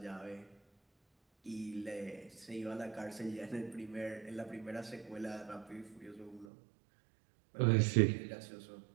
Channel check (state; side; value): drops out; left; at 6.5 s